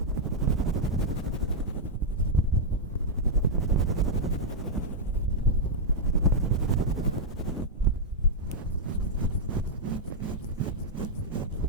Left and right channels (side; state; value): both; normal; correlation -0.04